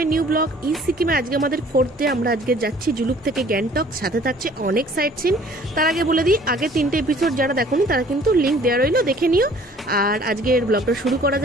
new blog. East সিকিমে আজকে আমাদের 4th ডে। আমরা আজকে যাচ্ছি জুলুক থেকে গ্যাংটক, সাথে থাকছে অনেক সাইট সিন। তার আগে বলে দিই, আগে 3টে এপিসোড যারা দেখোনি তারা কিন্তু লিঙ্ক দেওয়া রইলো, দেখে নিও। আর আজকের ব্লগটা শুরু করা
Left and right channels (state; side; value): normal; both; correlation 0.54